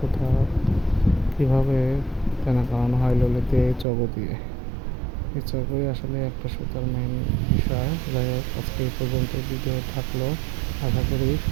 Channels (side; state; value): left; drops out; at 3.9 s